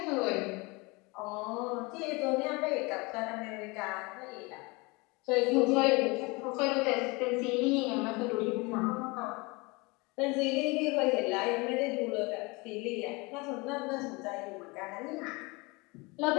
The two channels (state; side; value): quieter; right; 26.1 dB